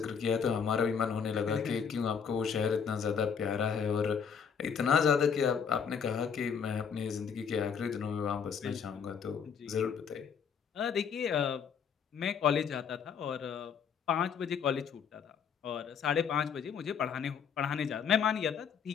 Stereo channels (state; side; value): quieter; right; 6.9 dB